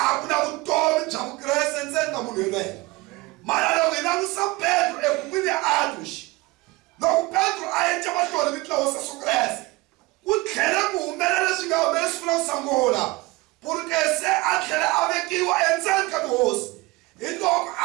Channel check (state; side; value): quieter; left; 21.8 dB